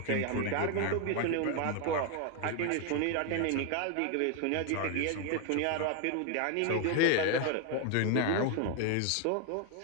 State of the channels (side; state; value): both; different; correlation 0.01